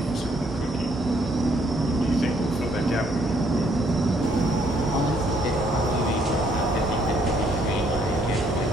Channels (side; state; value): both; normal; correlation 0.67